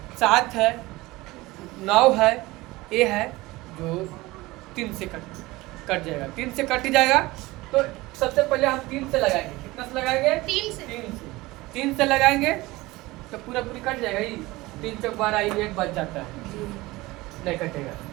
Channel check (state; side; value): quieter; left; 20.3 dB